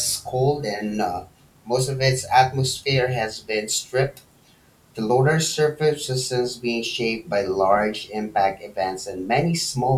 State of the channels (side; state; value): both; identical; correlation 1.00